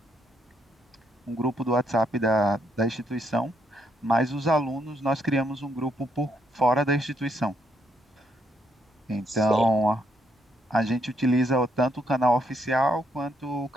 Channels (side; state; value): both; normal; correlation 0.74